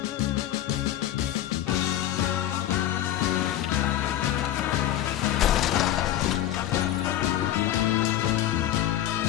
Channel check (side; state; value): right; quieter; 12.5 dB